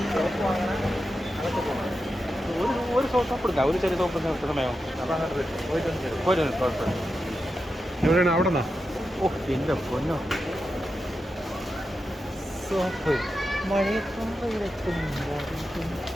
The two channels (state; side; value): normal; both; correlation 0.89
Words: ഒരു സോപ്പ് എടുക്കാം, ഒരു ചെറിയ സോപ്പ് സമയം എവിടെയാണ്? അവിടെ നിന്നാ? ഓ എൻ്റെ പൊന്നോ, സോപ്പ്